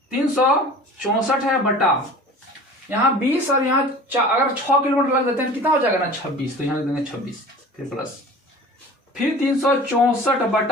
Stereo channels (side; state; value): both; normal; correlation 0.41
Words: है बटा यहाँ 20, और यहाँ अगर 6 किलोमीटर लग देते हैं कितना हो जाएगा ना 26, तो यहाँ लग देंगे 26, फिर प्लस, फिर 364